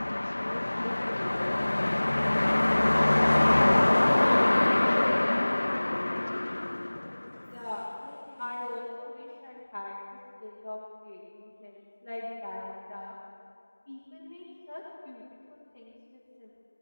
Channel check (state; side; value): inverted; both; correlation -1.00